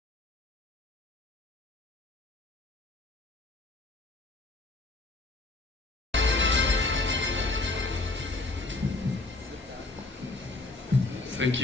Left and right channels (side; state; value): right; quieter; 3.1 dB